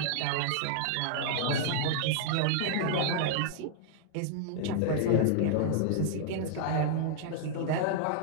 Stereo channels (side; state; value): both; different; correlation -0.01